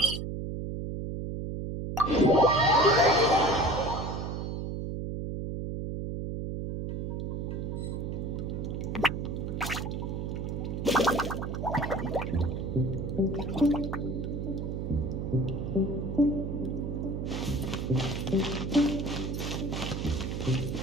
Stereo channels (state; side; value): noise; right; hum, 3 dB below the sound